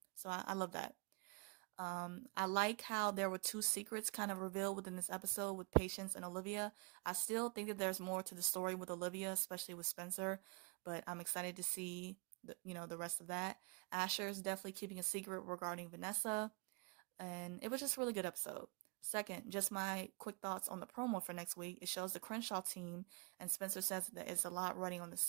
So I love that. I like how there were 2 secrets kind of revealed within this episode with Patience and Olivia. I still think that there's more to the story with Olivia, especially with Spencer, but I'm excited to see the rest of that. Asher is definitely keeping a secret regarding Vanessa, and it was just a really good episode. Second, just my quick thoughts on the promo for next week. It shows the Crenshaw team, and Spencer says that it's a lot running on the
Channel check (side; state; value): left; quieter; 32.0 dB